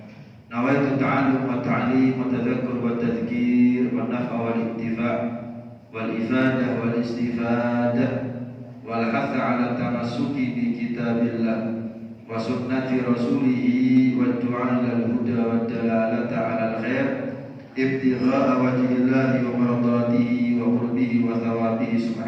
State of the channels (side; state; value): both; identical; correlation 1.00